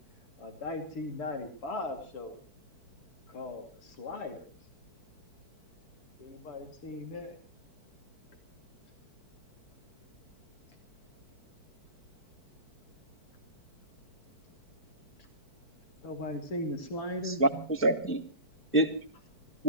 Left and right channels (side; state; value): right; late; 4.5 ms